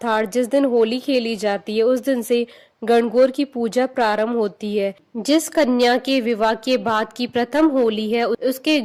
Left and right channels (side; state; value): both; identical; correlation 1.00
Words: जिस दिन होली खेली जाती है, उस दिन से गणगौर की पूजा प्रारंभ होती है। जिस कन्या के विवाह के बाद की प्रथम होली है, उसके